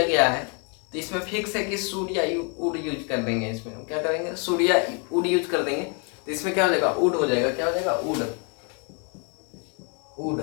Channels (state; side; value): quieter; right; 36.3 dB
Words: गया है। तो इसमें फिक्स है कि शुड या वुड यूज कर देंगे। इसमें हम क्या करेंगे, शुड या वुड यूज कर देंगे। तो इसमें क्या हो जाएगा, वुड हो जाएगा, क्या हो जाएगा वुड, वुड,